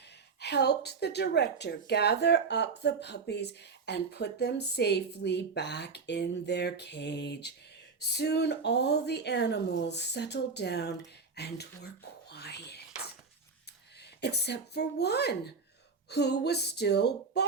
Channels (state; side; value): quieter; left; 4.9 dB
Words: helped the director gather up the puppies and put them safely back in their cage. Soon all the animals settled down and were quiet. Except for one, who was still